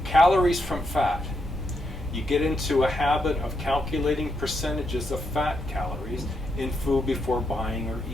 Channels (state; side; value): normal; both; correlation 0.81